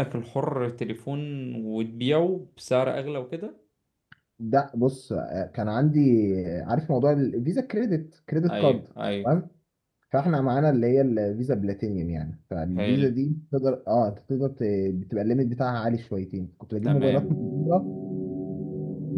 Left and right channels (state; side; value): identical; both; correlation 1.00